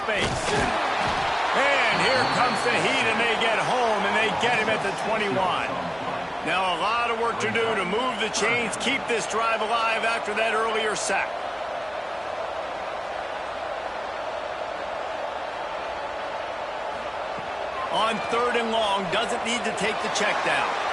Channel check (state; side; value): identical; both; correlation 1.00